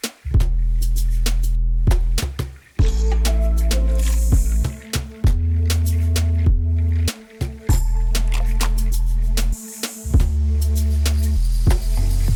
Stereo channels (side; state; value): both; identical; correlation 1.00